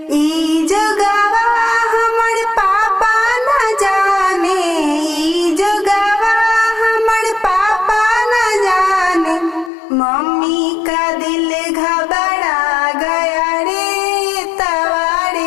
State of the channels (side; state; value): right; drops out; at 9.7 s